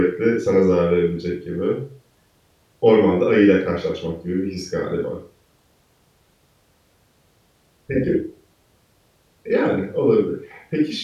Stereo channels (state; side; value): identical; both; correlation 1.00